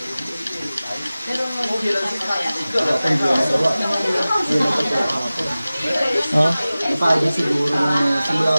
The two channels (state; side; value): inverted; both; correlation -0.97